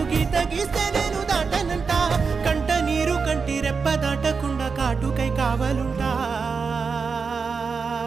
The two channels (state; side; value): quieter; left; 5.2 dB